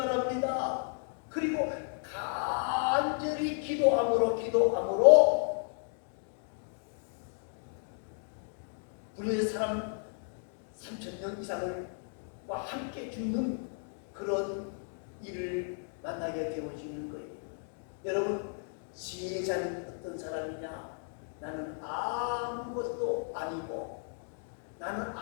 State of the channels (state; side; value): silent; right; 55 dB below the other